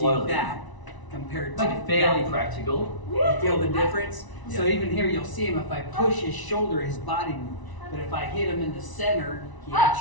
that compared to Make it fairly that. practical. You feel the difference? So Yeah. even here, you'll see him. If I push his shoulder, his body moves. But if I hit him in the center, he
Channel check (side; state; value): right; late; 1.0 ms